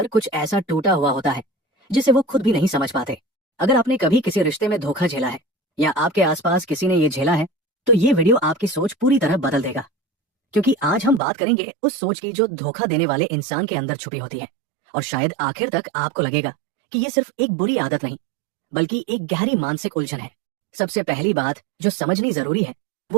कुछ ऐसा टूटा हुआ होता है जिसे वो खुद भी नहीं समझ पाते। अगर आपने कभी किसी रिश्ते में धोखा झेला है, या आपके आसपास किसी ने ये झेला है, तो ये वीडियो आपकी सोच पूरी तरह बदल देगा। क्योंकि आज हम बात करेंगे उस सोच की जो धोखा देने वाले इंसान के अंदर छुपी होती है। और शायद आखिर तक आपको लगेगा कि ये सिर्फ एक बुरी आदत नहीं, बल्कि एक गहरी मानसिक उलझन है। सबसे पहली बात जो समझनी जरूरी है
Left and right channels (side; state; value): left; drops out; at 11.2 s